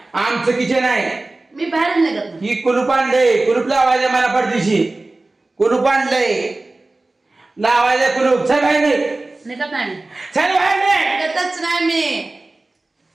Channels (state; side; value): quieter; left; 3.0 dB